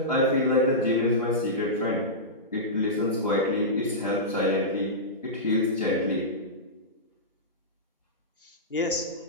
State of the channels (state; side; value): normal; both; correlation -0.15